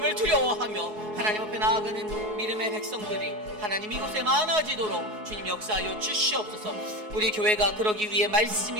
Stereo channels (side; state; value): left; late; 4.7 ms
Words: 두려워하며 하나님 앞에 나아가는 믿음의 백성들이 하나님 이곳에 많아지도록 주님 역사하여 주시옵소서. 우리 교회가 그러기 위해 말씀